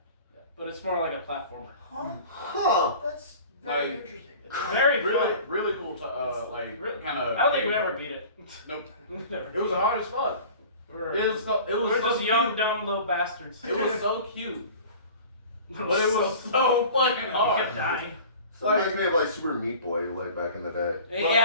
but it's more like a platformer. Huh. That's very Like- interesting. It's very Really, fun. really cool. Like Really- kind of. I don't think we ever beat it. Nope. Never. It was hard as fuck. It was so We're just cute. young, dumb little bastards. It was so cute, but it was so fucking I hard. kept dying. So it reminds me of like Super Meat Boy, like back in the day.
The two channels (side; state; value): both; inverted; correlation -0.42